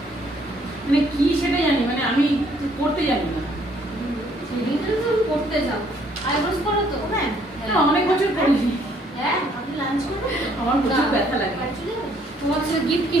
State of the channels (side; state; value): both; normal; correlation 0.65